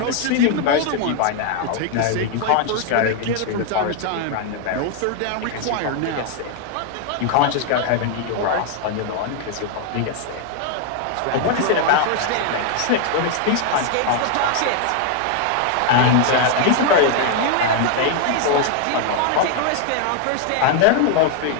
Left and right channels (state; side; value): different; both; correlation 0.00